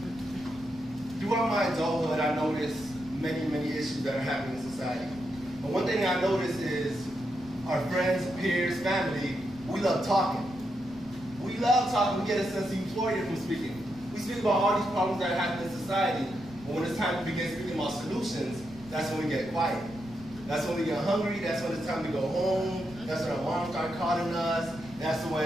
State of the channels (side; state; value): right; noise; rumble, 20 dB below the sound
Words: throughout my adulthood, I noticed many issues that are happening in society. But one thing I noticed is our friends, peers, family, we love talking. We love talking. We get a sense of euphoria from speaking. We speak about all these problems that happen in society, but when it's time to begin speaking about solutions, that's when we get quiet. That's when we get hungry. That's when it's time to go home. That's when our moms start calling us. That's when